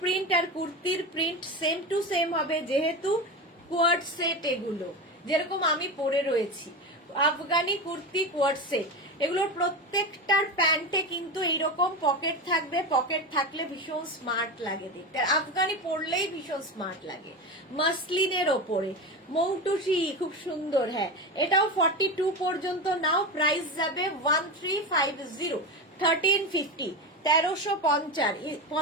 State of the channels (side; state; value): both; normal; correlation 0.21